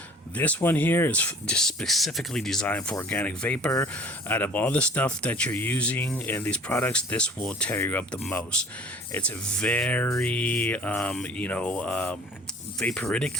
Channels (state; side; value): normal; both; correlation 0.48